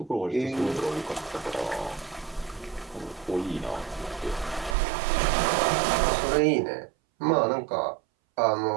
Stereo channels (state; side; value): drops out; left; at 4.8 s